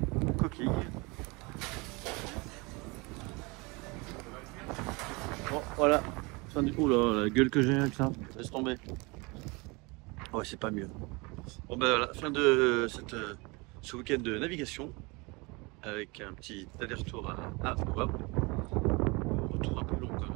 Coquille. Bon, voilà. Oh là, la gueule que j'ai avec ça. Laisse tomber. Ouais, c'est pas mieux. Bon ben voilà, fin de ce week-end de navigation avec un petit aller-retour à Wavre. retour un peu long quand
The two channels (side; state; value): left; quieter; 26.7 dB